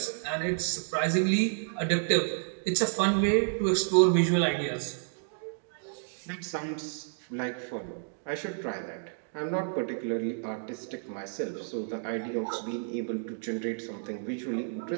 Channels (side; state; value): left; silent; digital silence